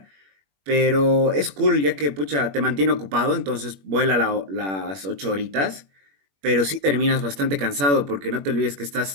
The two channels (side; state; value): left; late; 21 ms